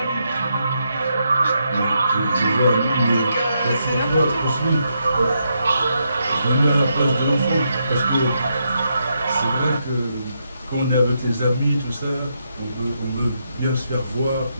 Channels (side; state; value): both; inverted; correlation -0.81